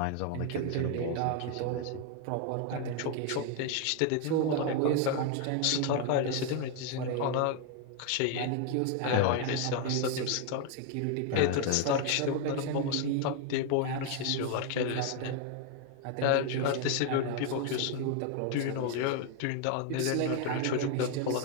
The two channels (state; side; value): different; both; correlation 0.00